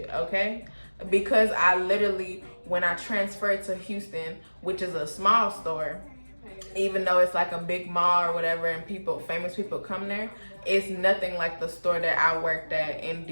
okay? Because I literally, when I transferred to Houston, which is a small store, even though it's like a big mall or whatever and famous people come there, it's nothing like the store that I worked at in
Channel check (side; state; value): both; inverted; correlation -1.00